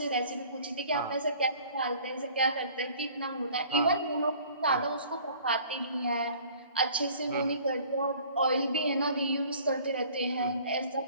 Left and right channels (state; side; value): inverted; both; correlation -0.51